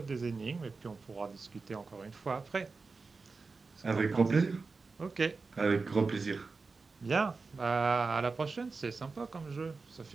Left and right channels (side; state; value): left; quieter; 4.2 dB